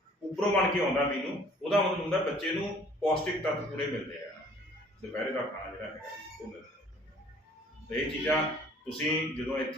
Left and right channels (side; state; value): both; normal; correlation 0.55